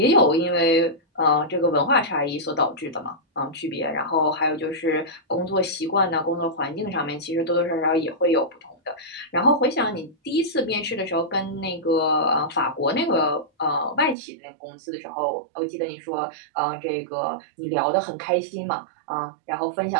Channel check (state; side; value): drops out; left; at 14.2 s